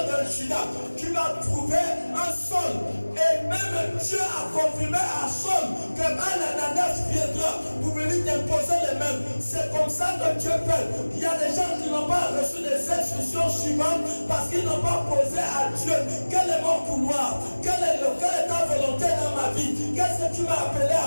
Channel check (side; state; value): both; inverted; correlation -1.00